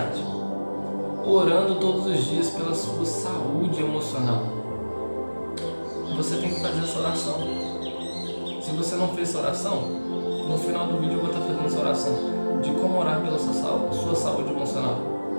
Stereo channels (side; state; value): both; inverted; correlation -1.00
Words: Orando todos os dias pela sua saúde emocional. Você tem que fazer essa oração. Se você não fez essa oração, no final do vídeo eu vou estar fazendo essa oração de como orar pela sua saúde emocional.